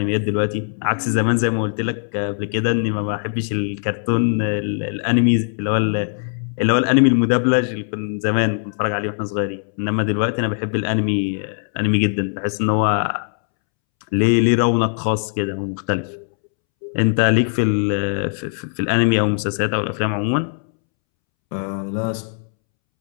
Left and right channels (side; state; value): right; silent; 66 dB below the other